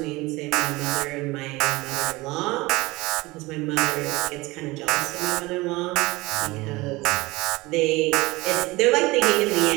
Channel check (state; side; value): quieter; left; 21.5 dB